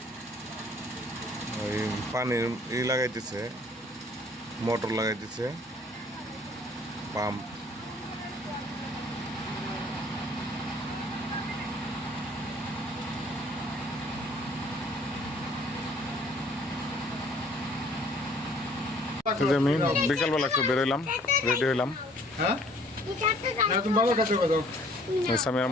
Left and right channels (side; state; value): both; normal; correlation 0.57